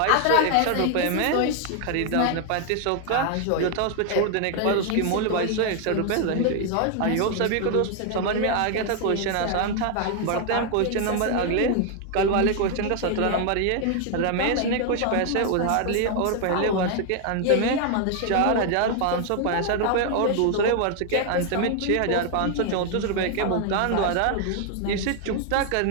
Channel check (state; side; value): different; both; correlation 0.00